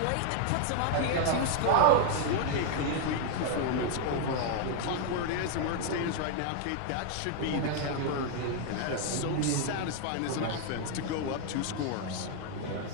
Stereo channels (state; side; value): different; both; correlation 0.00